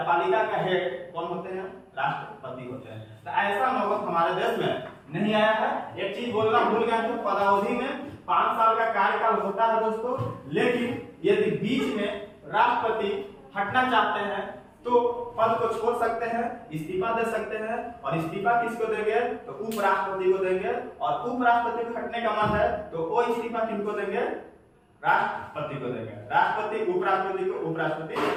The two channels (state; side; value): identical; both; correlation 1.00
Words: का हेड कौन होते हैं, राष्ट्रपति होते हैं। तो ऐसा नौबत हमारे देश में नहीं आया है। एक चीज बोलना भूल गया था, पदावधि में 5 साल का कार्यकाल होता है दोस्तों, लेकिन यदि बीच में राष्ट्रपति हटना चाहते हैं तो पद को छोड़ सकते हैं, इस्तीफा दे सकते हैं। और इस्तीफा किसको देंगे, तो उपराष्ट्रपति को देंगे। और उपराष्ट्रपति को हटने का मन है तो वो इस्तीफा किनको देंगे, राष्ट्रपति को देंगे। राष्ट्रपति उपराष्ट्रपति को, उपराष्ट्रपति